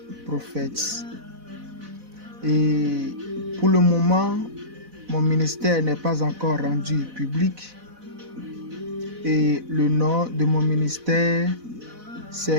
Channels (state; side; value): late; left; 4.0 ms